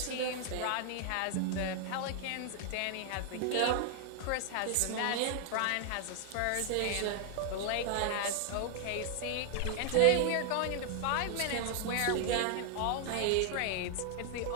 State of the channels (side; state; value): both; different; correlation 0.00